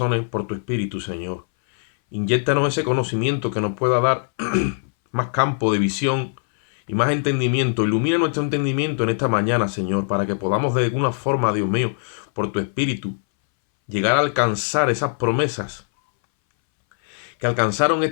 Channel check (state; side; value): silent; right; 62 dB below the other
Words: por tu Espíritu, Señor. Inyéctanos ese conocimiento que nos pueda dar más campo de visión y más entendimiento. Ilumina nuestro entendimiento en esta mañana, Señor, para que podamos de alguna forma, Dios mío, por tu Espíritu, llegar a alcanzar esas promesas que alcanzaron